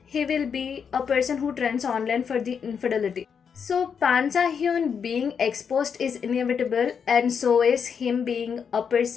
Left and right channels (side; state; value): right; quieter; 6.8 dB